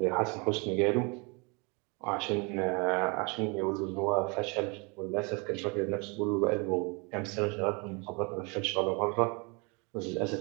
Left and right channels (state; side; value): quieter; left; 30.7 dB